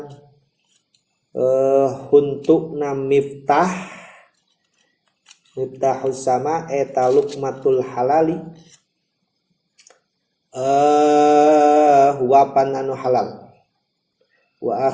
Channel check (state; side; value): identical; both; correlation 1.00